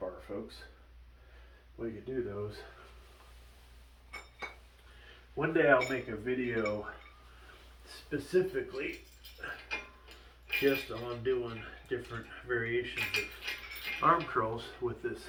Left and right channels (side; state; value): both; identical; correlation 1.00